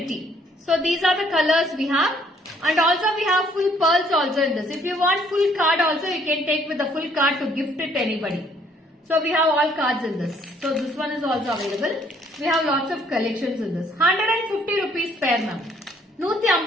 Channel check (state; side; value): normal; both; correlation 0.64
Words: So these are the colors we have. And also we have full pearls also in this. If you want full card also, you can take with the full card to gift it to anybody. So we have all cards in this. So this one is also available. We have lots of collections in this. 150 rupees pair, ma'am.